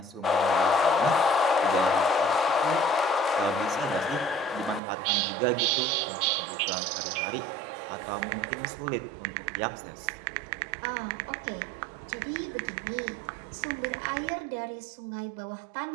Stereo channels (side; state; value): left; drops out; at 4.8 s